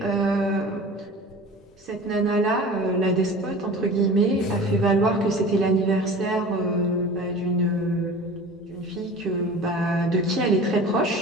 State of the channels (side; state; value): both; normal; correlation 0.39